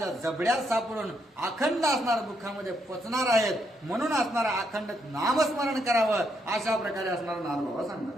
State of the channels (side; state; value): both; normal; correlation 0.77